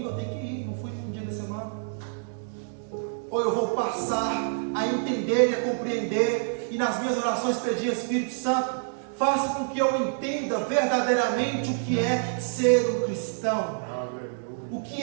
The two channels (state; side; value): silent; left; digital silence